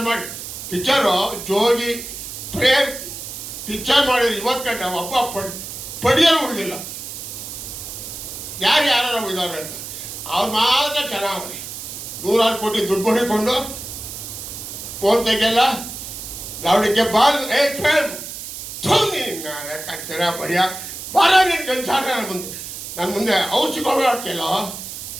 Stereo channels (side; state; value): right; noise; hiss, 9 dB below the sound